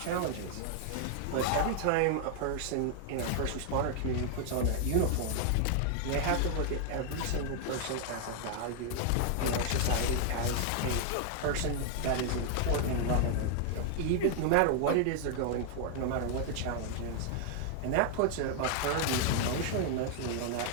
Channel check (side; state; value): both; different; correlation 0.00